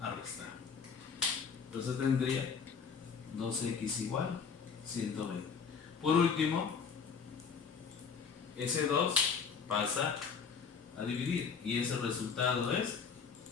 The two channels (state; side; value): quieter; right; 6.0 dB